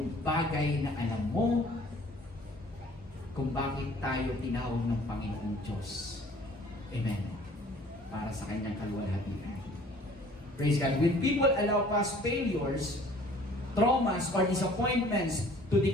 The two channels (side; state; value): both; normal; correlation 0.53